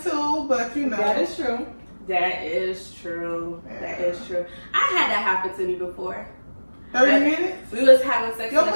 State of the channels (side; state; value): both; inverted; correlation -1.00